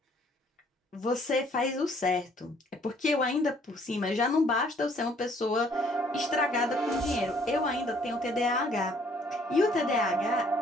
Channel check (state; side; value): normal; both; correlation 0.62